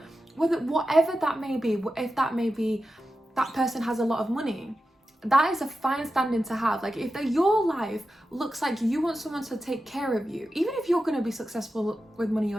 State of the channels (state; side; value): normal; both; correlation 0.91